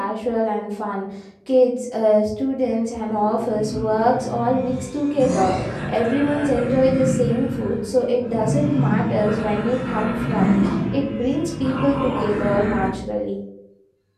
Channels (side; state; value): both; identical; correlation 1.00